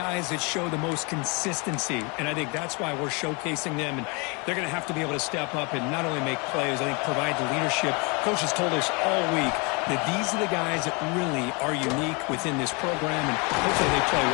that show the most consistency, and I think that's why we're showcasing them. And they're going to have to be able to step up and not only make plays, I think provide the leadership. Coaches told us all week that these are the guys that really are unique within this program, and hopefully they play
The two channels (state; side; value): quieter; right; 30.7 dB